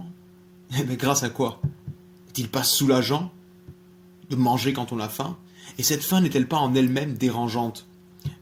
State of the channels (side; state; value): both; identical; correlation 1.00